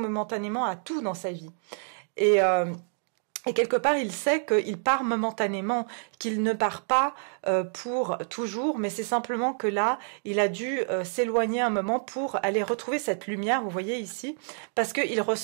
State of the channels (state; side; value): silent; left; digital silence